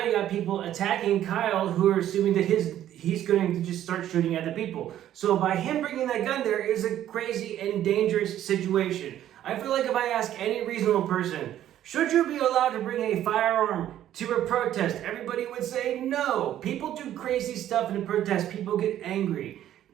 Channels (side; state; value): left; quieter; 11.9 dB